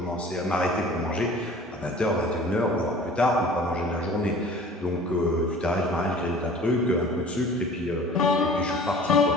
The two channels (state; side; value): normal; both; correlation 0.45